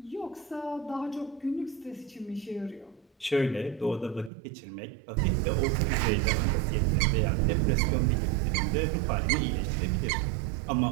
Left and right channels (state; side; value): drops out; left; at 4.3 s